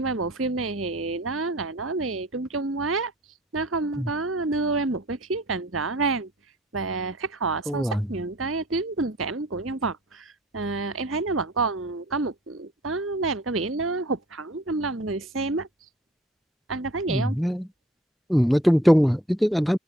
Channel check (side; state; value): both; normal; correlation 0.52